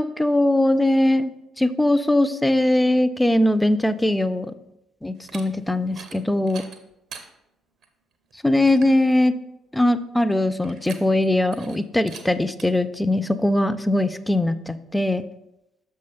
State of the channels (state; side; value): normal; both; correlation 0.94